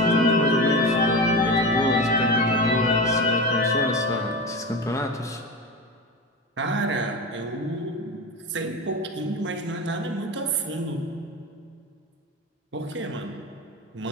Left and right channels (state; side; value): normal; both; correlation 0.24